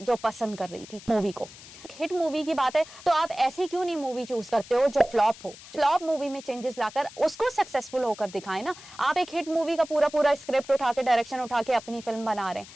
जो पसंद कर रही थी मूवी को। हिट मूवी की बात है तो आप ऐसी क्यों नहीं मूवी चूज करते हो जो फ्लॉप हो? फ्लॉप मूवी में चेंजेस लाकर उसको सक्सेसफुल होकर दिखाएं ना। आप एक हिट मूवी का पूरा स्क्रिप्ट उठा के, डायरेक्शन उठा के अपनी फिल्म बना रहे हैं,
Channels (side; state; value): left; noise; hiss, 18 dB below the sound